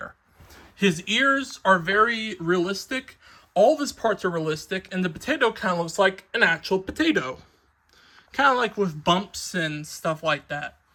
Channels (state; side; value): identical; both; correlation 1.00